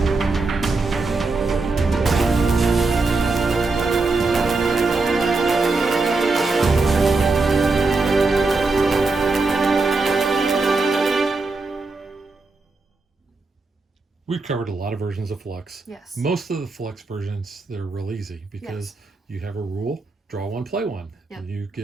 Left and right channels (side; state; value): left; quieter; 3.7 dB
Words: We've covered a lot of versions of Fluxx. Yes. Most of the Fluxx versions, they're real easy because you have a rule, draw one, play one. Yep. And you